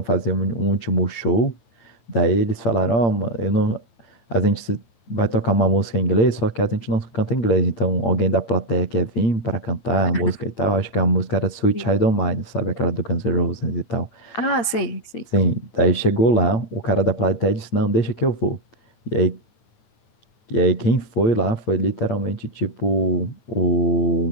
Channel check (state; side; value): late; right; 8.7 ms